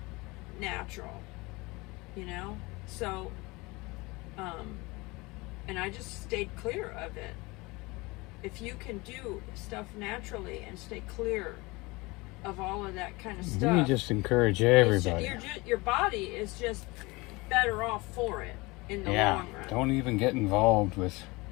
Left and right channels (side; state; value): right; quieter; 24.0 dB